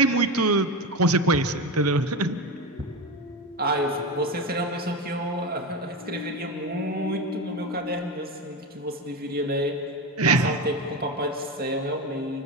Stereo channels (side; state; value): both; normal; correlation 0.19